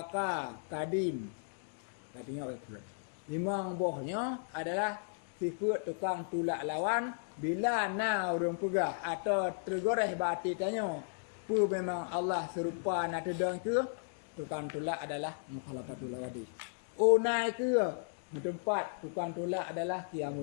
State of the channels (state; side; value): silent; right; digital silence